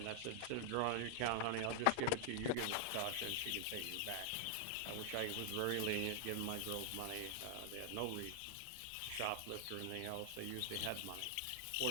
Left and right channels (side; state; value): both; different; correlation 0.00